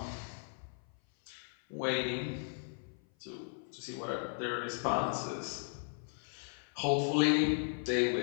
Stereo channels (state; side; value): silent; right; 53 dB below the other